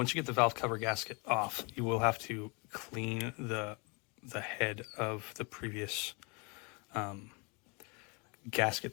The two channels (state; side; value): quieter; right; 31.0 dB